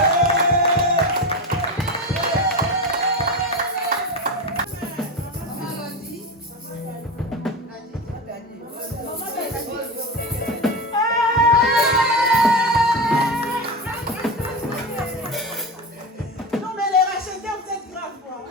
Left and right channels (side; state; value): both; normal; correlation 0.21